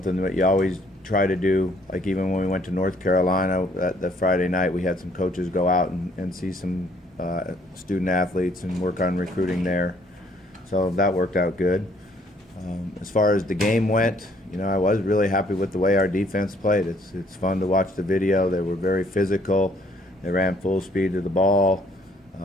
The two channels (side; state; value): both; normal; correlation 0.63